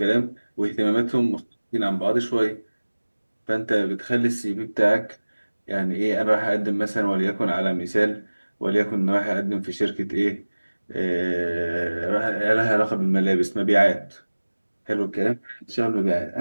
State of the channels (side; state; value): both; inverted; correlation -1.00